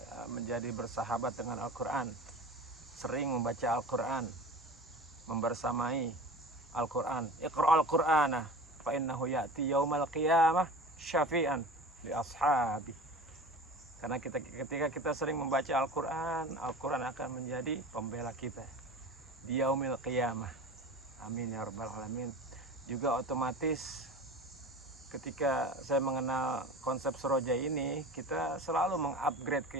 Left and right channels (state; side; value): normal; both; correlation 0.35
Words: menjadi bersahabat dengan Al-Quran, sering membaca Al-Quran, membersamai Al-Quran. Iqra al-Qur'ana fa innahu ya'ti yaumal qiyamah syafi'an li ashabi. Karena ketika kita sering membaca Al-Quran, Al-Quran akan menjadi pembela kita di yaumil qiyamah. Amin ya rabbal alamin. Juga otomatis ketika saya mengenal konsep Seroja ini, kita selalu mengupgrade